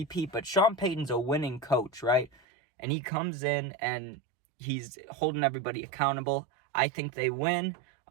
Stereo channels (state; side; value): drops out; left; at 2.3 s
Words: But Sean Payton's a winning coach, right? And he comes in and he's holding everybody accountable. I think they win.